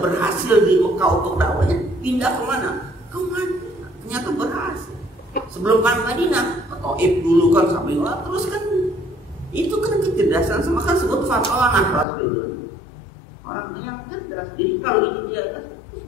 berhasil di Mekah untuk dakwahnya, pindah kemana? Ke Madinah. Ternyata berhasil. Sebelum kan Madinah, Taif dulu kan sampai terus kan itu kan kecerdasan sama kan sebut fatonah Rasul itu orang yang cerdas. Jadi kalau ini dia terus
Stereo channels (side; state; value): right; drops out; at 12.1 s